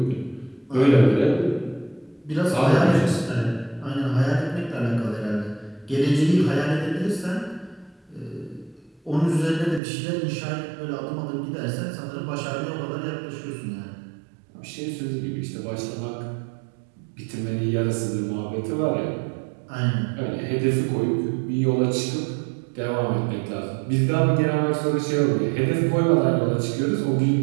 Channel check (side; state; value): left; drops out; at 9.8 s